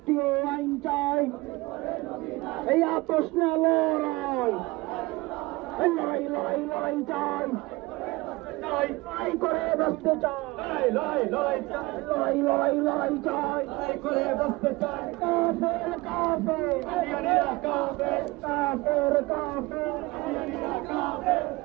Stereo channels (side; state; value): left; quieter; 22.2 dB